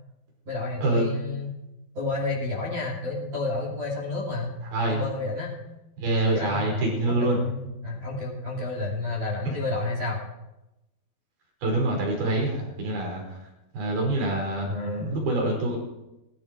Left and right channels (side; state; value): left; late; 12 ms